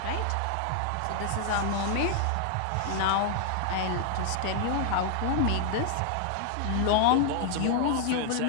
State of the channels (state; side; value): different; both; correlation 0.00